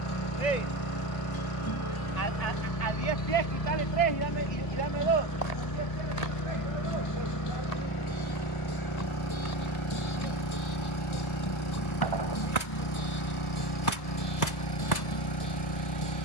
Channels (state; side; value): late; right; 1.8 ms